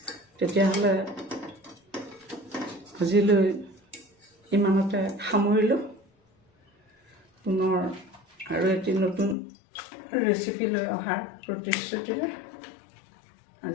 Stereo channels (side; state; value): right; drops out; at 9.3 s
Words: তেতিয়াহ'লে আজিলৈ ইমানতে সামৰিলোঁ। পুনৰ আৰু এটি নতুন ৰেচিপি লৈ অহাৰ প্ৰতিশ্ৰুতিৰে